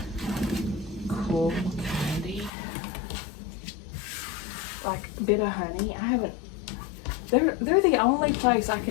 cool candy. Like Bit of Honey. I haven't. They're the only place I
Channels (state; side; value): drops out; right; at 2.5 s